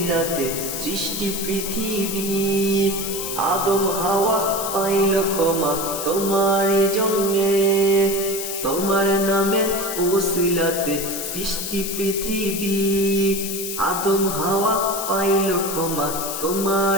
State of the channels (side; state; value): left; noise; hiss, 5 dB below the sound